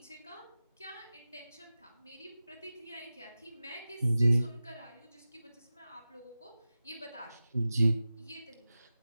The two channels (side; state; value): both; inverted; correlation -0.95